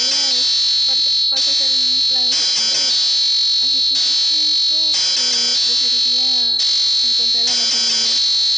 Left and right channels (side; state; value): both; normal; correlation 0.95